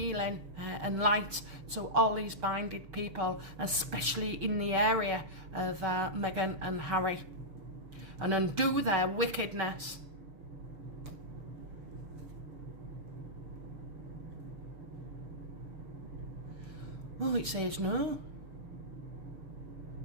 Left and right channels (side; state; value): left; late; 6.5 ms